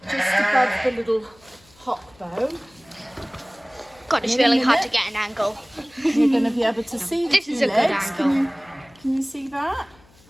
just above the little hock bone. God, it's really hard to get an angle. You're going to be able to see the 2 legs. This is a good angle. Can you see that?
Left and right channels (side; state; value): left; noise; hum, 29 dB below the sound